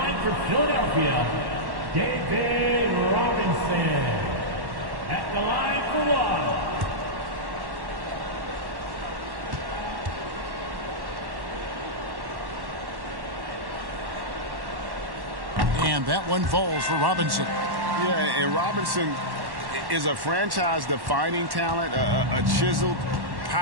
for Philadelphia, David Robinson. At the line for one. And that one falls for Robinson. Yeah, and Robinson is a franchise-defining talent, a chiseled,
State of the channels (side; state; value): left; late; 1.1 ms